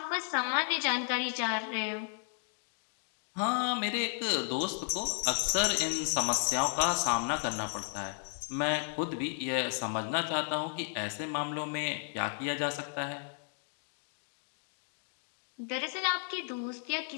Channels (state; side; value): silent; right; 55 dB below the other